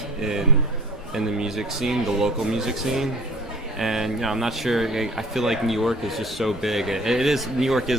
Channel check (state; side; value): normal; both; correlation 0.47